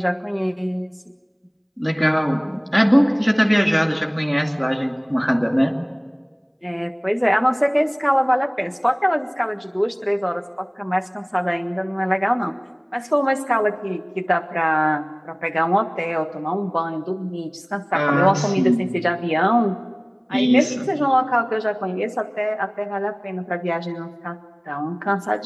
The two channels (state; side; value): identical; both; correlation 1.00